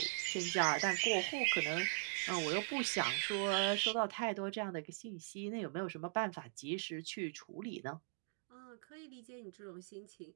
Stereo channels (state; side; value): silent; left; digital silence